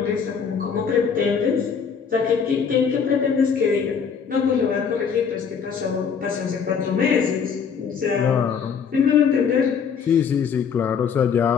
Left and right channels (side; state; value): right; quieter; 6.6 dB